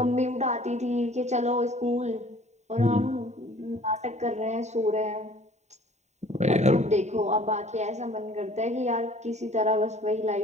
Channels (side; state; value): left; late; 0.33 ms